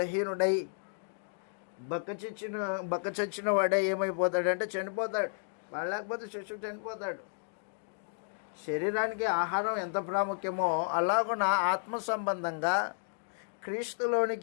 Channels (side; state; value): right; silent; digital silence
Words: బక్కచచ్చిన వాడే ఏమైపోతాడంటే చనిపోతాడు. పాలు లేకపోతే శిశువు చనిపోతాడు. శరీరానికి ఆహారం ఎంత ప్రాముఖ్యమో అలాగున ఆత్మ సంబంధంగా